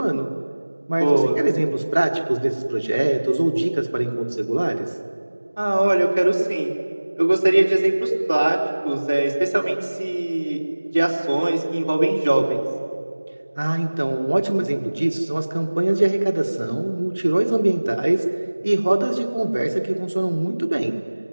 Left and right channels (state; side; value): inverted; both; correlation -1.00